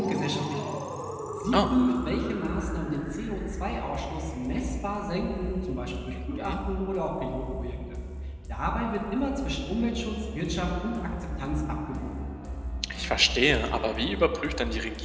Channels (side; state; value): both; identical; correlation 1.00